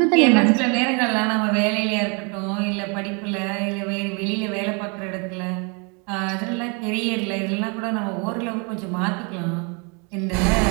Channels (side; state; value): left; quieter; 33.3 dB